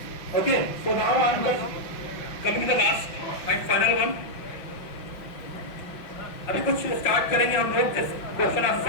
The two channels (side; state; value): right; late; 5.9 ms